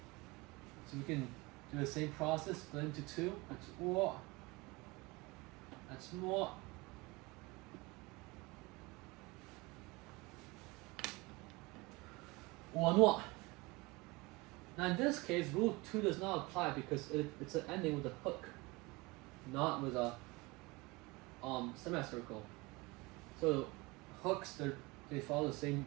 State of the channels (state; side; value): quieter; left; 24.1 dB